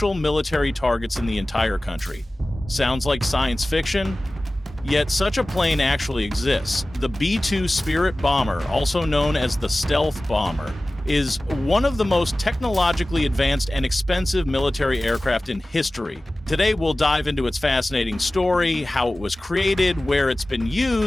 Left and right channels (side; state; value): both; normal; correlation 0.97